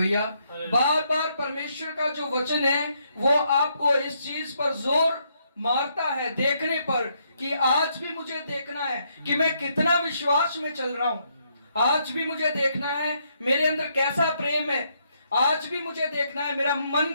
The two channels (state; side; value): inverted; both; correlation -0.74